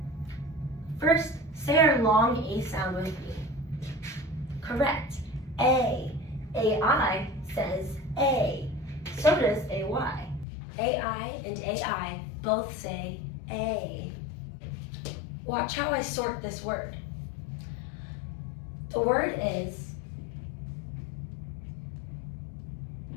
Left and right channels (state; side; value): drops out; right; at 10.5 s